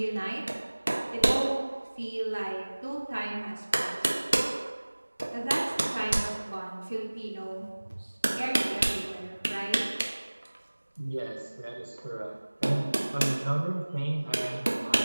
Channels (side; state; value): both; inverted; correlation -1.00